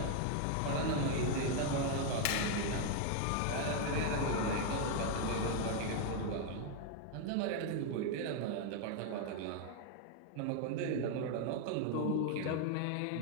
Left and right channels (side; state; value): both; different; correlation 0.00